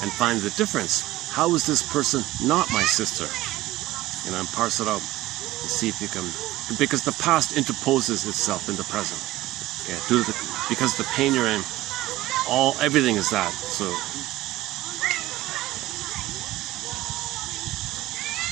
and find the difference. How is this person not my sister? You know, and parse it out and see if you can, because the past interposes itself in the present. Yeah, because the pain you're in, everything is that. So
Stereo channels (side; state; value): left; quieter; 16.5 dB